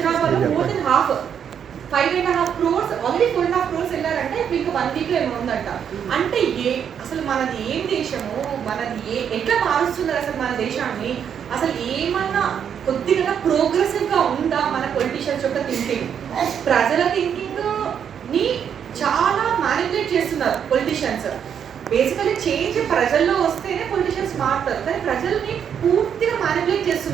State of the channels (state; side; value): quieter; left; 8.2 dB